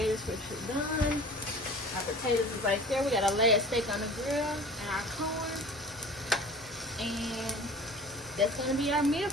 is pretty done. Our potatoes is right there. We got our last steak on the grill and our corn. And that's going to be our meal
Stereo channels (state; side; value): normal; both; correlation 0.42